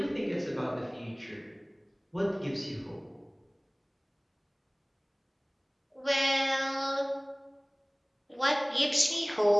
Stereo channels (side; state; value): both; identical; correlation 1.00